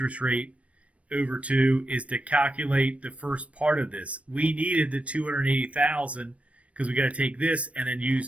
rate over 2 is to calculate the first part of this. We needed the $280,000 because we got to take this and then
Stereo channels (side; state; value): left; late; 0.064 ms